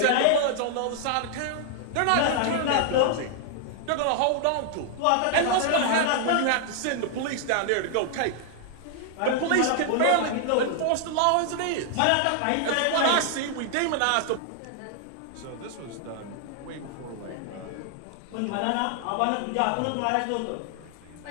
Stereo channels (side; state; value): both; different; correlation 0.00